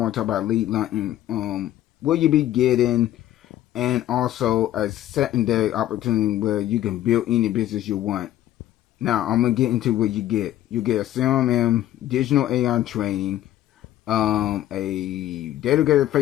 to talk about lead hunting. Will you be getting, and also a secondary opportunity where you can build any business you want. Now I'm gonna get into what you get. You get a CRM, digital AI training, a dedicated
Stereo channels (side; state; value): right; quieter; 13.1 dB